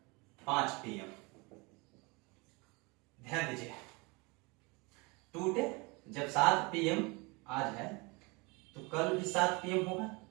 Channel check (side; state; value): left; quieter; 27.4 dB